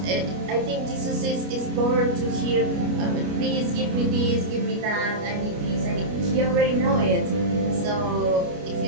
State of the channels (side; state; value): left; late; 29 ms